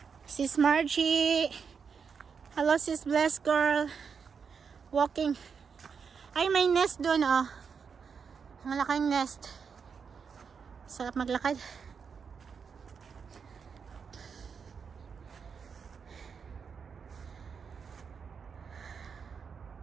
Sis Margie, Hello sis, blessed girl. Walking. Ay, may nest doon, oh. Ang laking nest. Sarap maglakad.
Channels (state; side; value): quieter; left; 6.1 dB